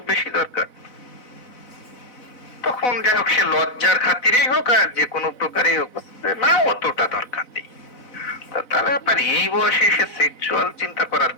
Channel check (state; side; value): late; right; 4.0 ms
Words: বেশি দরকার? তখন যাই হোক সে লজ্জার খাতিরেই হোক আর যে কোনো প্রকারেই হোক, না অতটা দরকার নেই। তাহলে আপনার এই বয়সে এসে সেক্সুয়াল চিন্তা করার